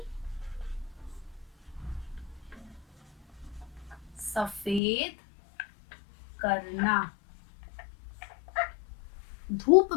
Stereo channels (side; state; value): right; drops out; at 4.8 s